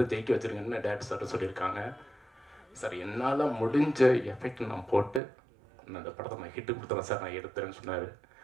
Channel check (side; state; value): left; drops out; at 5.2 s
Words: ஜெயிக்க வச்சுருங்கன்னு டேரக்டர் சார் சொல்லியிருக்காங்க. சார் என்னால் முடிஞ்ச எஃபெக்ட் நான் போட்டு நான் இந்த படத்தை நான் ஹிட்டு கொடுத்துறேன் சார், நான் எடுத்துறேன்னு சொன்னார்.